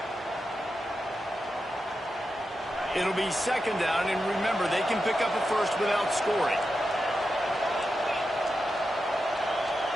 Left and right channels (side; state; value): both; normal; correlation 0.89